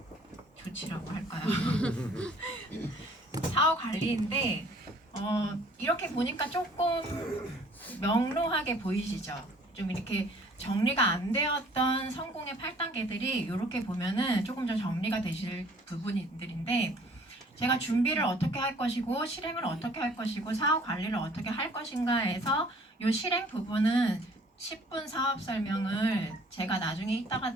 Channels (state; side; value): normal; both; correlation 0.55